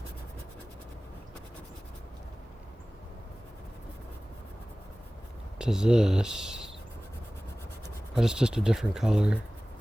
to this, but it's just a different color.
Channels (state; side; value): normal; both; correlation 0.98